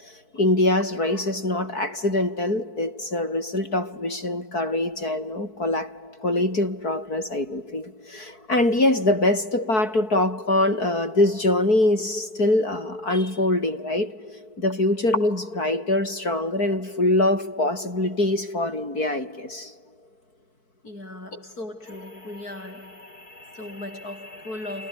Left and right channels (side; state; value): right; late; 4.6 ms